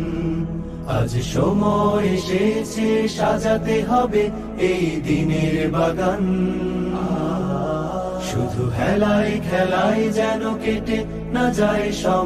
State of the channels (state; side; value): identical; both; correlation 1.00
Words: আজ সময় এসেছে সাজাতে হবে এই দিনের বাগান। শুধু হেলায় খেলায় যেন কেটে না যায়